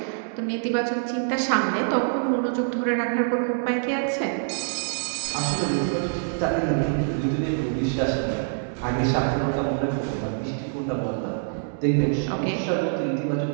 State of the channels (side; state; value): left; silent; 62 dB below the other